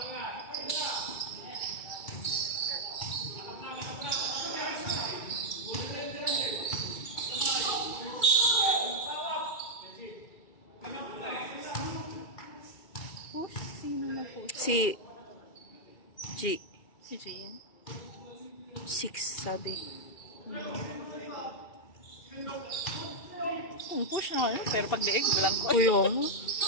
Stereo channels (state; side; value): late; right; 2.3 ms